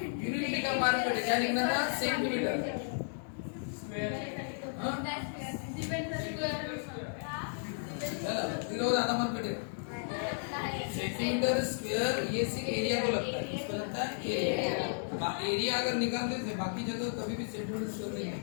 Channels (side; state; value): right; silent; digital silence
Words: यूनिट लिखा, मार्क कटे, क्या लिखना था? सेंटीमीटर चलो आधा मार्क कटे। सेंटीमीटर स्क्वायर ये सिर्फ एरिया को लगता है, इसको लगता है एरिया। एरिया अगर निकाल देते बाकी जगह कभी भी सेंटीमीटर स्क्वायर नहीं है।